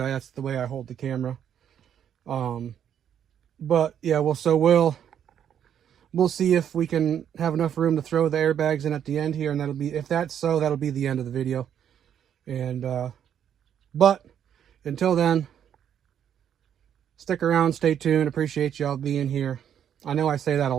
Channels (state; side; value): quieter; left; 9.2 dB